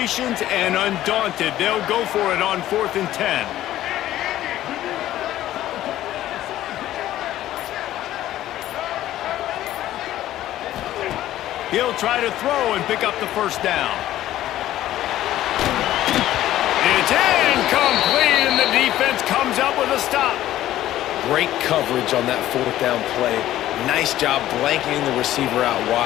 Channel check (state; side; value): quieter; right; 13.7 dB